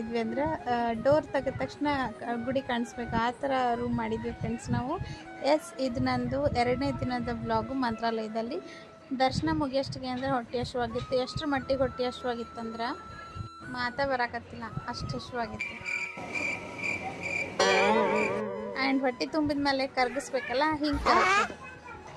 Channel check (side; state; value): both; identical; correlation 1.00